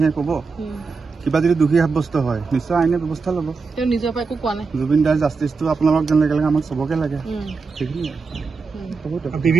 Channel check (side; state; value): left; quieter; 4.7 dB